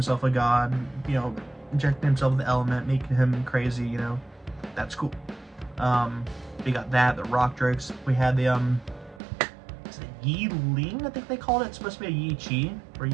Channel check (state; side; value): drops out; left; at 9.2 s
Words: a god, injecting himself with the element, making him crazy, that's cool. We got that, the rock drakes. We had the is it Yi Ling, I think they called it. It's supposed to be a Yi Chi or